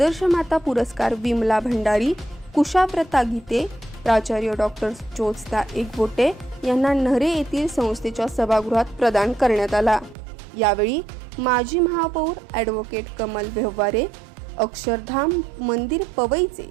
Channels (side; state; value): left; drops out; at 10.2 s